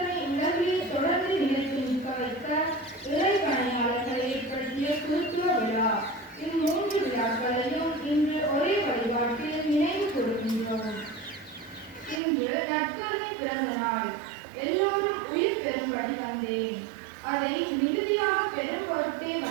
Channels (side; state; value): left; drops out; at 12.2 s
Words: உலகிலே தொடர்ந்து நிலைத்து நிற்க வைக்க இறை பணியாளர்களை ஏற்படுத்திய குருத்துவ விழா. இம்மூன்று விழாக்களையும் இன்று ஒரே வழிபாட்டில் நினைவு கூறுகின்றோம். இன்று நற்கருணை பிறந்த நாள். எல்லோரும் உயிர் பெறும்படி வந்தேன், அதை மிகுதியாக பெரும் பொருட்டே